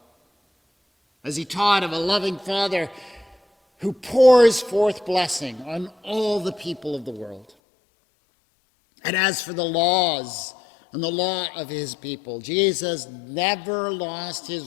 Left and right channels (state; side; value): drops out; right; at 7.5 s